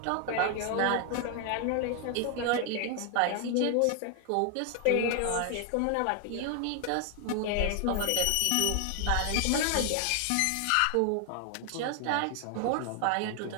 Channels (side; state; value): both; different; correlation 0.00